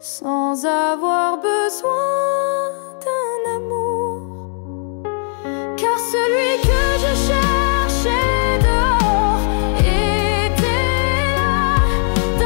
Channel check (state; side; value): silent; right; 57 dB below the other